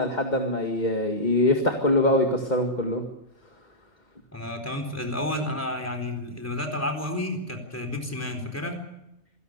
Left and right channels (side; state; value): both; normal; correlation -0.11